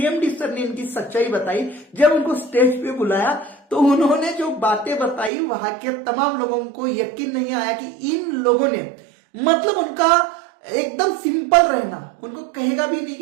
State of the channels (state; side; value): drops out; left; at 5.3 s